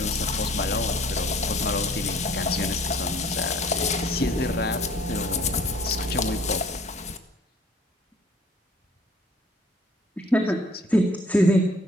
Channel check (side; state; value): both; normal; correlation 0.55